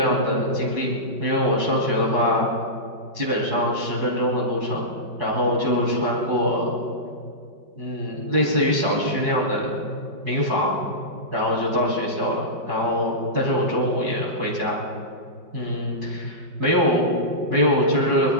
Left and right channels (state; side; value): late; left; 5.2 ms